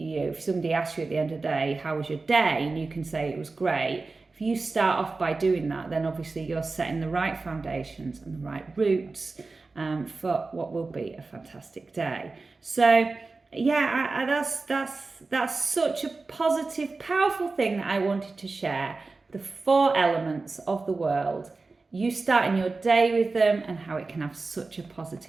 know, if somebody asks you at the end of the day, how was your day? And you can say it was great. If you start off by doing that, then obviously you're setting the right foundations and the right roots for what will be a fantastic day. So yeah, that's such a positive, powerful thing that I wanted to share. The four elements of the world, you starting your day with them and how it can have such a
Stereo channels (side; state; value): left; quieter; 3.8 dB